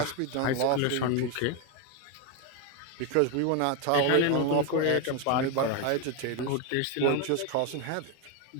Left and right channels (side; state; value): both; different; correlation 0.02